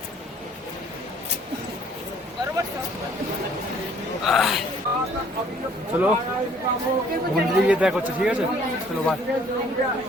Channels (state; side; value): normal; both; correlation 0.58